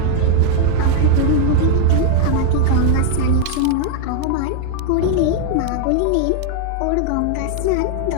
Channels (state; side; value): different; both; correlation 0.00